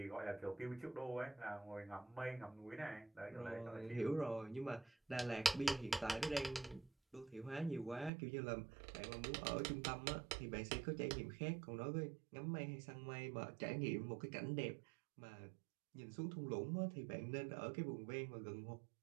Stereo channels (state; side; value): drops out; left; at 8.1 s